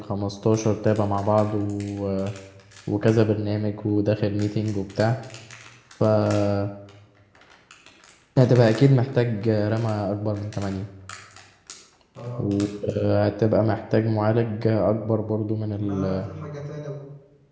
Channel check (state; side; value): identical; both; correlation 1.00